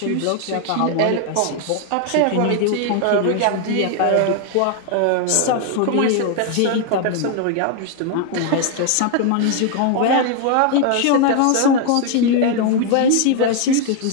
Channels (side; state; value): both; different; correlation 0.00